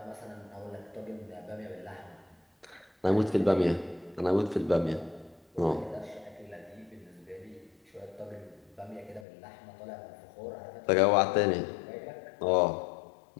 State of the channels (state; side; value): drops out; right; at 9.2 s